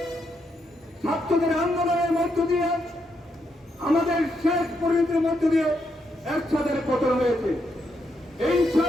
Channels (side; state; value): both; normal; correlation 0.79